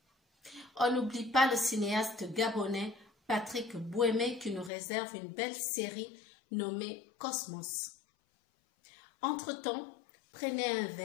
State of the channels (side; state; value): right; drops out; at 4.7 s